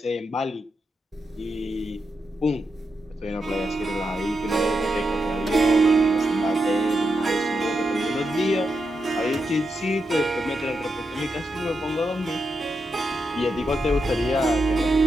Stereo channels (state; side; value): normal; both; correlation 0.85